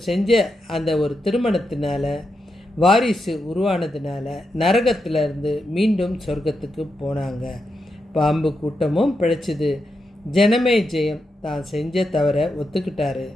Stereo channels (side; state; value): both; normal; correlation 0.85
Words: செஞ்ச அந்த ஒரு திருமணத்தினால வாரிசு உருவானதுனால நரகத்திலிருந்து மீண்டும் சொர்க்கத்துக்கு போனாங்க. பாம்பு கூட்டமும் பிழைச்சிது. ஜனமே ஜெயம் தான் செஞ்ச தவிர ஒத்துக்கிட்டாரு.